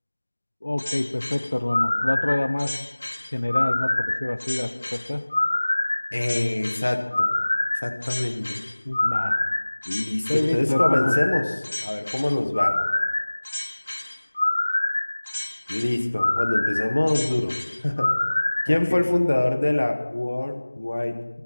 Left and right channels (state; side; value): inverted; both; correlation -1.00